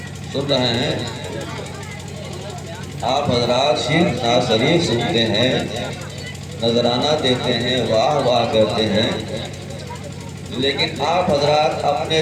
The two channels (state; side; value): identical; both; correlation 1.00